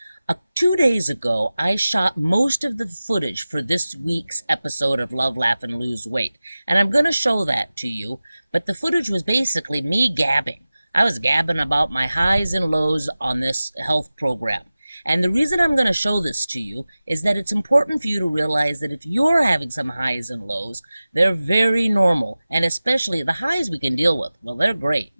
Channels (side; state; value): both; inverted; correlation -0.96